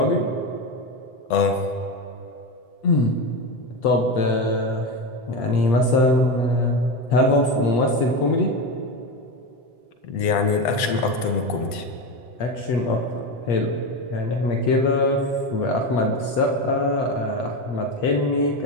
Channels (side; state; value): right; late; 7.8 ms